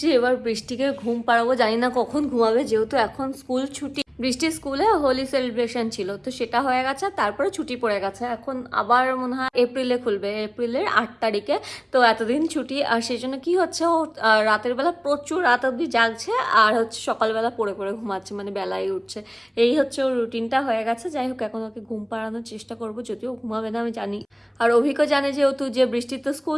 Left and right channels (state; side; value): identical; both; correlation 1.00